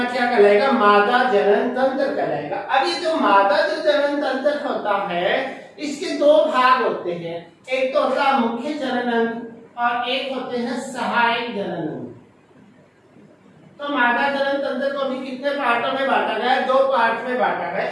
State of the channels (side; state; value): both; identical; correlation 1.00